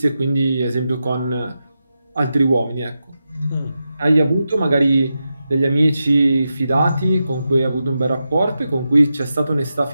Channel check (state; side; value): inverted; both; correlation -0.89